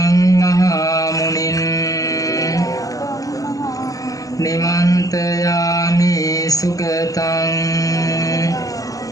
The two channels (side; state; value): right; late; 0.17 ms